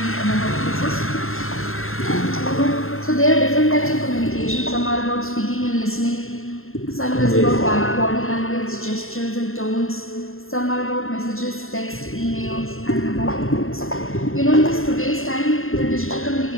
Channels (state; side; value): late; right; 0.61 ms